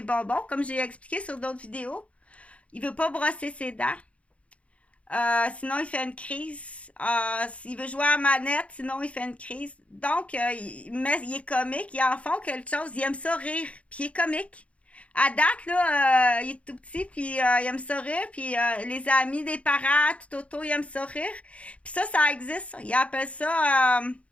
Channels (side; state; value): right; late; 0.063 ms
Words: bonbons, comme j'ai expliqué sur d'autres vidéos. Il veut pas brosser ses dents. Sinon, il fait une crise. S'il veut jouer à la manette, sinon, il fait une crise. Donc, il est comique. Il en font quelque chose. Il aime ça rire. Puis, il est comique. À date, là, il est tout petit, puis il aime ça rire. Puis, les amis des parents, tout autour, ils aiment ça rire. Puis ça existe. Ils appellent ça...